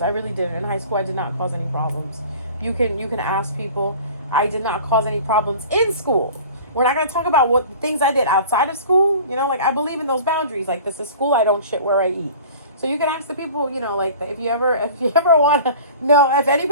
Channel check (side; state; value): both; inverted; correlation -0.43